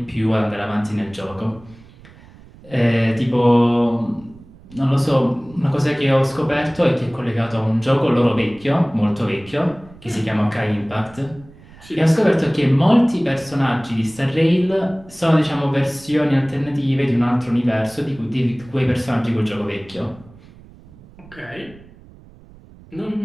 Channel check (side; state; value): right; noise; rumble, 23 dB below the sound